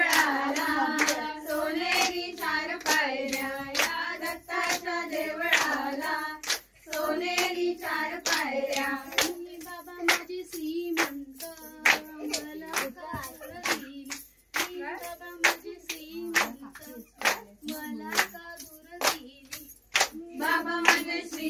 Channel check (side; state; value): both; identical; correlation 1.00